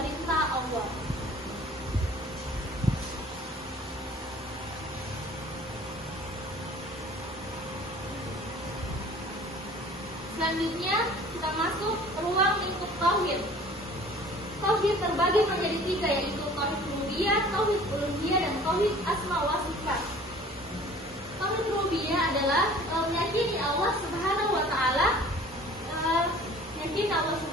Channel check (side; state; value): both; normal; correlation 0.48